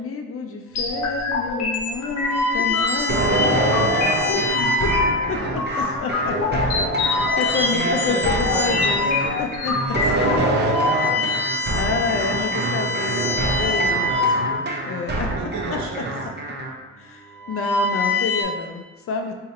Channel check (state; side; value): normal; both; correlation 0.14